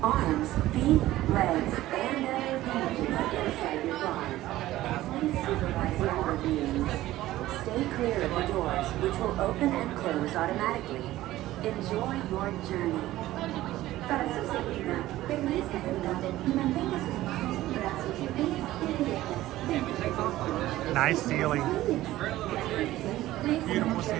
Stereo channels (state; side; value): quieter; left; 15.6 dB